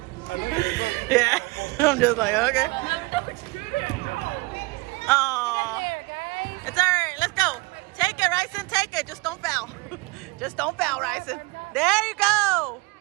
I know you're going. Yeah. I'm just like, okay. Oh. It's all right. Let's go. Take it, Ryson. Take it. Just don't foul. Just don't foul, Ryson. There you go.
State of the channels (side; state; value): left; quieter; 24.7 dB